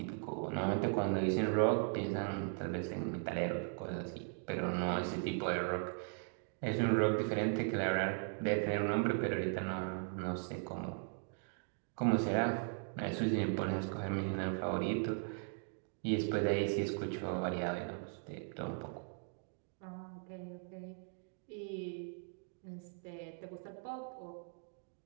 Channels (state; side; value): silent; left; 52 dB below the other